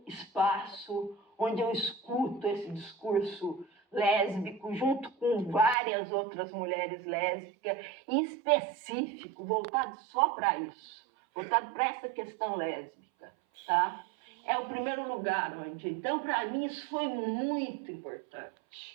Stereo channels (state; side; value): drops out; left; at 5.8 s